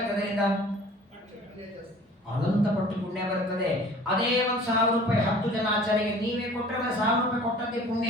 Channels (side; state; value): both; normal; correlation 0.47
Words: ಅದರಿಂದ? ಅನಂತ ಪಟ್ಟು ಪುಣ್ಯ ಬರುತ್ತದೆ. ಅದೇ 1,000 ರೂಪಾಯಿ 10 ಜನ ಆಚಾರ್ಯರಿಗೆ ನೀವೇ ಕೊಟ್ಟರೆ 1,000 ರೂಪಾಯಿ ಕೊಟ್ಟದ್ದೇ